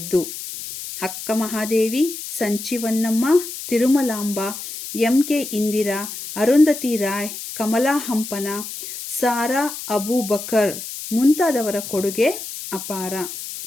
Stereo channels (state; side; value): noise; left; hiss, 9 dB below the sound